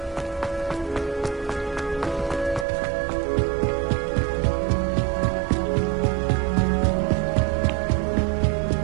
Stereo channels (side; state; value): left; drops out; at 2.7 s